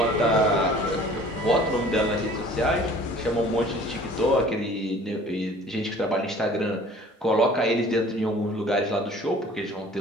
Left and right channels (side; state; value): both; normal; correlation 0.49